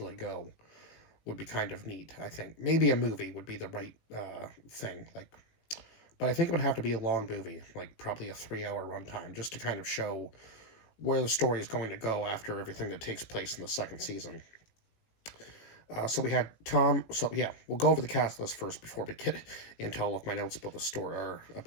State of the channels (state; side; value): late; right; 18 ms